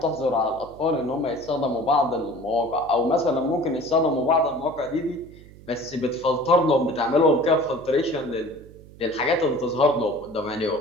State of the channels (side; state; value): right; noise; hum, 20 dB below the sound